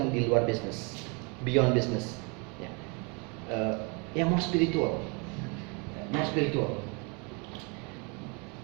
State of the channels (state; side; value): quieter; left; 32.3 dB